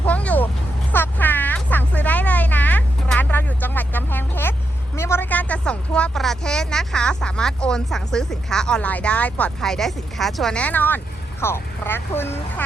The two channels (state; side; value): normal; both; correlation 0.83